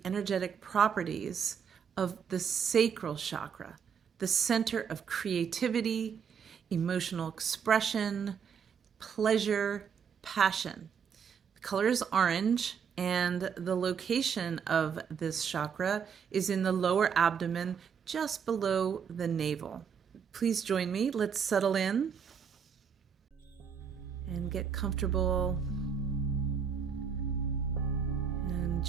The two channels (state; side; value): quieter; left; 7.0 dB